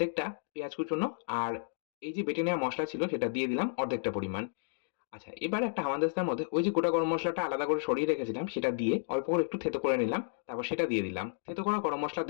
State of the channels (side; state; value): right; silent; digital silence